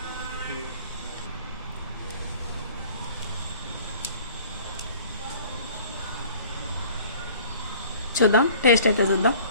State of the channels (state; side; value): inverted; both; correlation -0.49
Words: చూద్దాం, టేస్ట్ అయితే చూద్దాం.